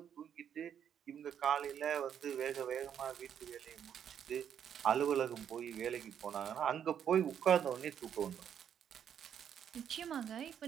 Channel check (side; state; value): left; quieter; 8.8 dB